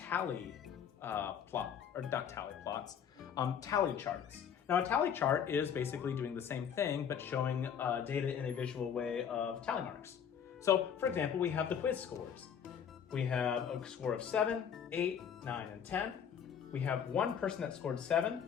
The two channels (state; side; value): quieter; right; 8.1 dB